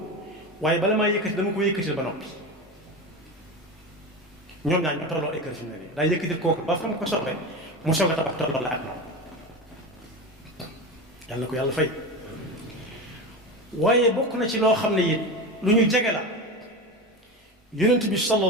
waaye bala maa yëkkati dama ko yëkkatil ba noppi ñoom ñaar ñoo tolloo ay kër fi mu ne nii daa yëkkatil kooku ba fa mu ko soxle mu soog a tabax tolloo la ak moom yàlla na ko yàlla fay waaye bokk na ci loo xam ne it lu ñu jege la yonent bi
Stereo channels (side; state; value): both; normal; correlation 0.24